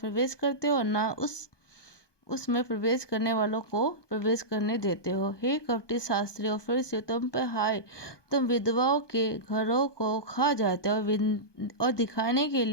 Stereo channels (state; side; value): late; right; 1.2 ms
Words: करते हो, ना उसमें प्रवेश करने वालों को प्रवेश करने देते हो। हे कपटी शास्त्री और फरीसियों, तुम पर हाय, तुम विधवाओं के घरों को खा जाते हो और दिखाने के